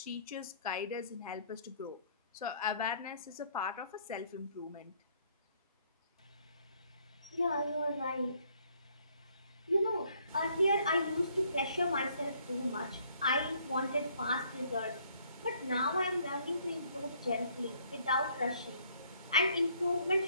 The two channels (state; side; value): inverted; both; correlation -0.65